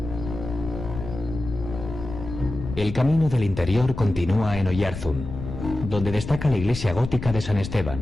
El camino del interior continúa en Oyarzún, donde destaca la iglesia gótica de San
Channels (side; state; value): left; noise; rumble, 9 dB below the sound